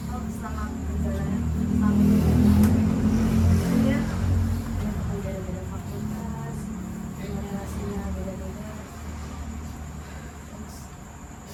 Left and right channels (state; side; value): identical; both; correlation 1.00